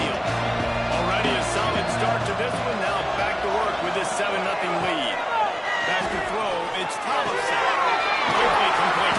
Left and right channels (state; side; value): identical; both; correlation 1.00